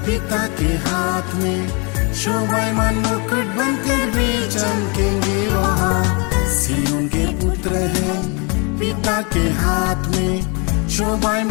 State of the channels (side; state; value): right; quieter; 32.5 dB